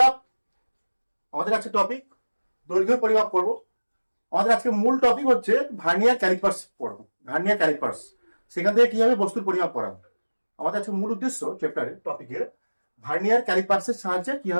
আমাদের আজকে টপিক দৈর্ঘ্য পরিমাপ করব। আমাদের আজকে মূল টপিক হচ্ছে ভার্নিয়ার ক্যালিপার্স পড়াবো। ভার্নিয়ার ক্যালিপার্স, সেখান থেকে কিভাবে বস্তুর পরিমাপ করা। আমাদের আজকে মূল উদ্দেশ্য চ্যাপ্টারের টপিকের ভার্নিয়ার ক্যালিপার্সের সাহায্যে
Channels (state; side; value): inverted; both; correlation -1.00